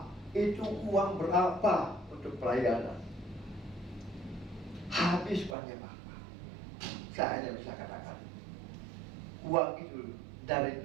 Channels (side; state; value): left; drops out; at 5.6 s